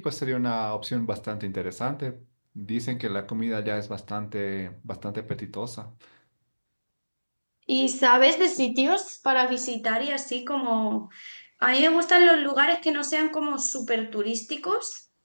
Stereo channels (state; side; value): inverted; both; correlation -1.00